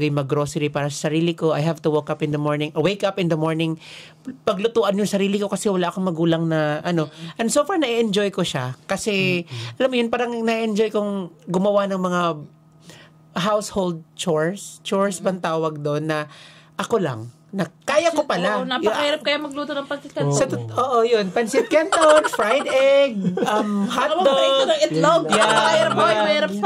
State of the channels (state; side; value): identical; both; correlation 1.00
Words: yung mag-grocery para sa sarili ko. I have to wake up in the morning, paglutuan yung sarili ko kasi wala akong magulang na And so far, na-enjoy ko siya. Kasi, alam mo yun, parang na-enjoy kong gumawa ng mga household chores. Chores bang tawag doon na ako lang. Na kaya ko pala. Napakahirap kaya magluto ng pancit canton. Oo, yun. Pancit canton, fried egg, hotdog. Itlog. Mahirap